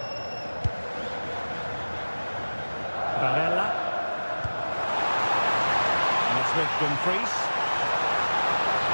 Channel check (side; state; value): both; inverted; correlation -1.00